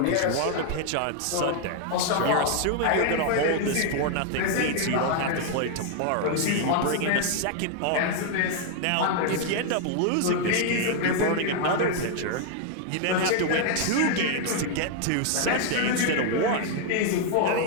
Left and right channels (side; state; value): both; different; correlation 0.00